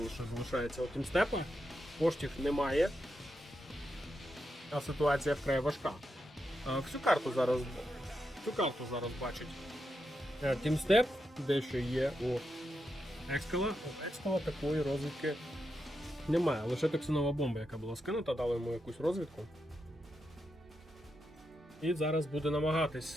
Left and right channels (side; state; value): both; normal; correlation 0.85